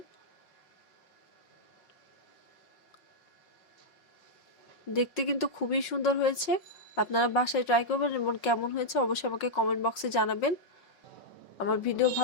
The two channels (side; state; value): right; late; 5.5 ms